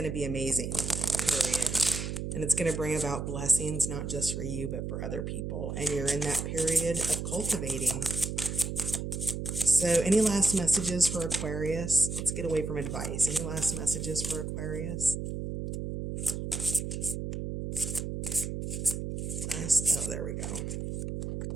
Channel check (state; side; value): noise; right; hum, 4 dB below the sound